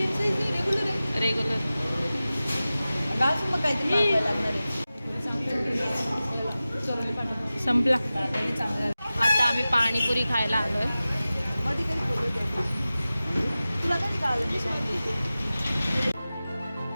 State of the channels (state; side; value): inverted; both; correlation -0.96